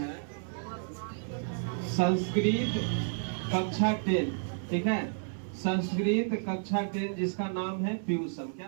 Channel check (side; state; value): left; silent; 57 dB below the other